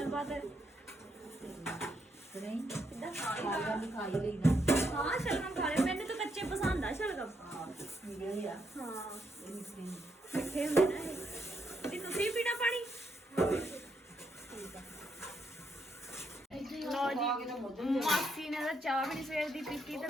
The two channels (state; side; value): normal; both; correlation 0.78